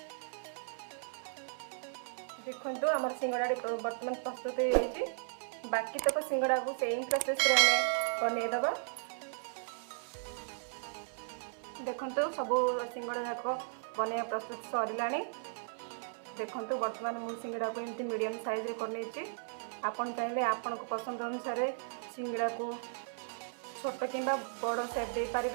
देखंतु आमर सिंगड़ा बर्तमान प्रस्तुत हो जाइए। बाकी तक सिंगड़ा को सेम प्रोसेस रे बनै दबा। देखंतु सब सिंगड़ा जाक बनैया प्रस्तुत सरिलानी। देखंतु बर्तमान मु सिंगड़ा को एमती मीडियम साइज रे करने छी। आपन चाहे आपन को पसंद अनुसार सिंगड़ा को छोट किंबा बड़ शेप दे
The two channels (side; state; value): left; silent; 54 dB below the other